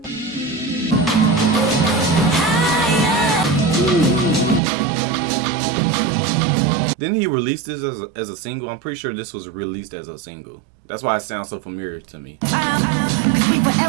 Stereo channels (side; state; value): left; drops out; at 4.6 s